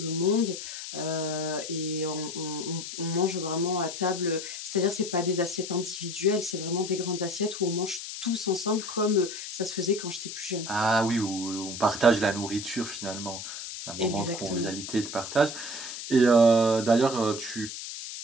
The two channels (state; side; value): noise; left; hiss, 8 dB below the sound